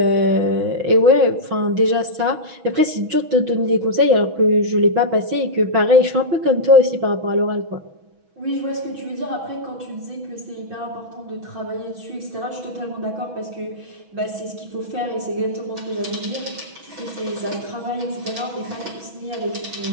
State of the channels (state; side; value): late; left; 6.1 ms